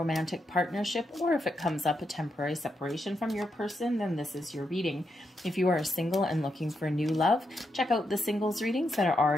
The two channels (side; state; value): both; normal; correlation 0.83